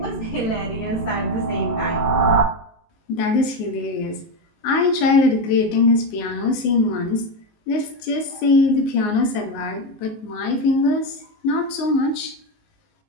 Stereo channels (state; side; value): late; right; 18 ms